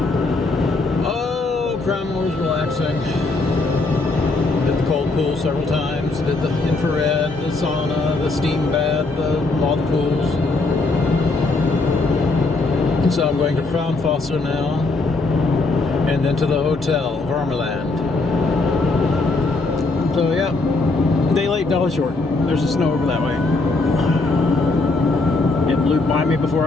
Oh, Krauma was relaxing. Did the cold pool several times. Did the infrared, the sauna, the steam bath, all the pools. And so I'm going to Fontana now, and then to the hotel, Varmeland. So yeah, day late, dollar short. There's the snow over that way. It blew by me before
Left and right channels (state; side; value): quieter; right; 3.3 dB